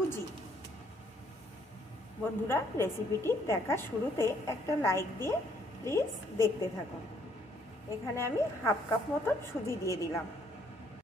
बंधुरा रेसिपिटी देखार शुरूते एक लाइक दिए प्लिज देखते थाकुन। एखाने आमी हाफ कप मतन सुजी दिए दिलाम।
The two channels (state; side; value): normal; both; correlation 0.66